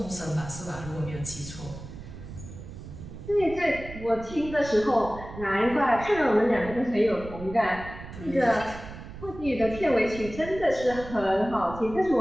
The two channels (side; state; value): right; noise; rumble, 13 dB below the sound